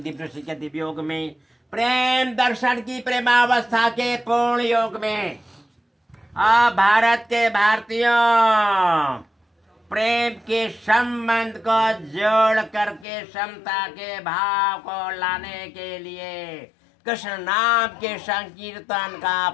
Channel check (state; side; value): drops out; right; at 13.1 s